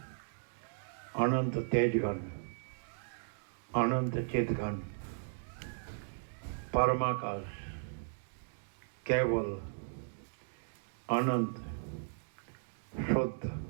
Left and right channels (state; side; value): silent; left; digital silence